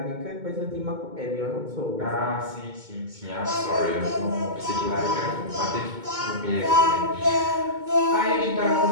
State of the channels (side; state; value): left; late; 2.2 ms